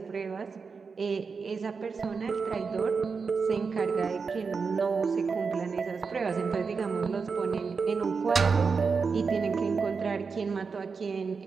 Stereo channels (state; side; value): quieter; left; 5.1 dB